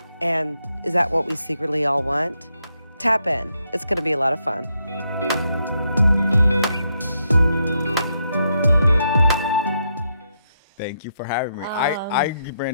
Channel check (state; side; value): inverted; both; correlation -0.80